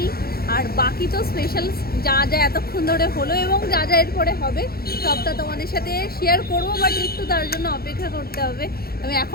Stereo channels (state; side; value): late; right; 0.44 ms